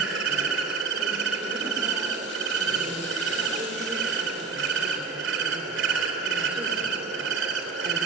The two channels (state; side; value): quieter; left; 4.7 dB